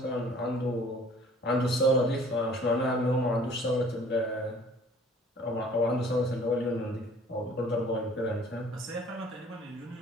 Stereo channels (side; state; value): both; normal; correlation 0.53